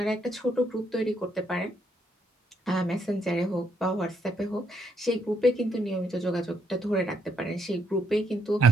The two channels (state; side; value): normal; both; correlation 0.74